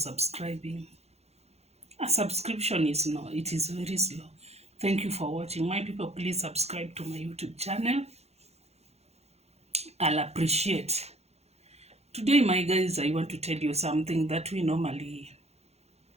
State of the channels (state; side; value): late; left; 0.31 ms